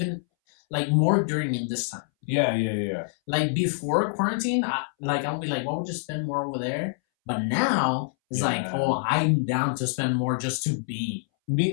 Like more during in this time. Yeah. Like before quarantine, I'll be like, what would you spend more over there? But now it's like, oh, I'm down to spend more just to be.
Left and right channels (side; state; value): right; silent; 61 dB below the other